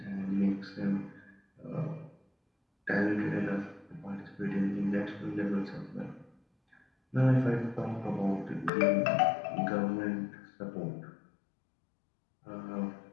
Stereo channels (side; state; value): right; drops out; at 8.7 s